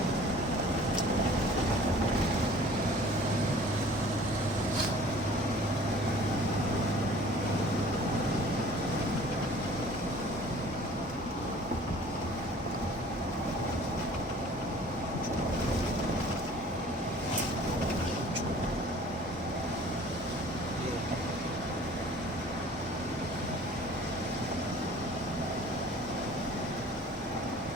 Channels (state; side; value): normal; both; correlation 0.49